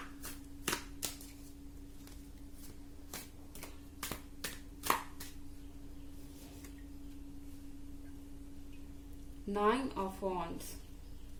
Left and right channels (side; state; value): both; identical; correlation 1.00